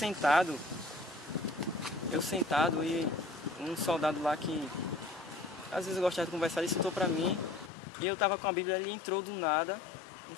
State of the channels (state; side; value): drops out; right; at 7.7 s